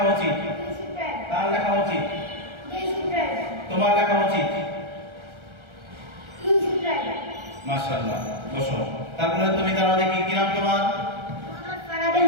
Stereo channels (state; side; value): late; left; 1.3 ms